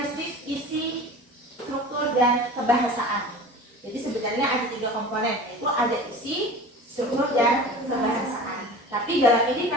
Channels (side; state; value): both; normal; correlation 0.37